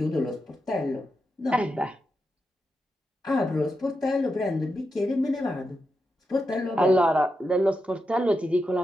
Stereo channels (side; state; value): both; normal; correlation 0.87